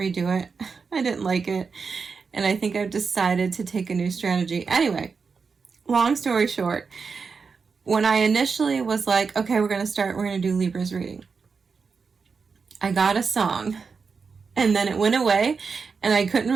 redo it. I didn't like it, and I think I've decided to take a new strategy. Anyway, long story short, when I initially was like, okay, we're going to do Libra's reading, I got a song, and then it went away, and I couldn't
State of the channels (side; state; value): left; quieter; 5.2 dB